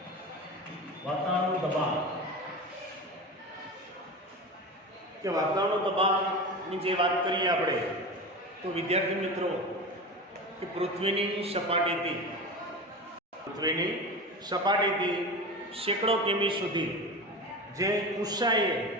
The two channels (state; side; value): normal; both; correlation 0.27